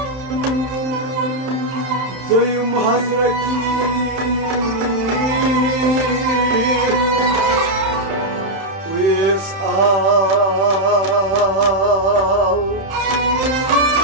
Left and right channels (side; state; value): left; late; 31 ms